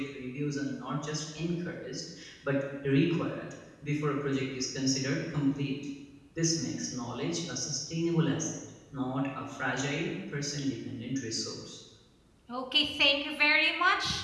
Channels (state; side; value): identical; both; correlation 1.00